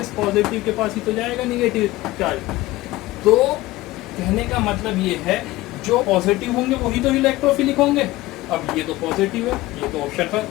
पॉजिटिव के पास ही तो जाएगा निगेटिव चार्ज। तो कहने का मतलब ये है जो पॉजिटिव होंगे वही तो इलेक्ट्रोफिलिक होंगे। अब ये तो पॉजिटिव है, ये तो ऑप्शन पर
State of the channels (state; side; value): quieter; right; 18.2 dB